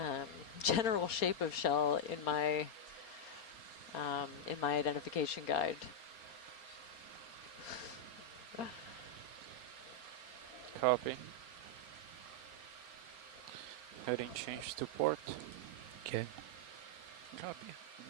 general shape of shell in my identification guide. Copy. Heading change to port. Okay. Copy.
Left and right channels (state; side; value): late; right; 4.3 ms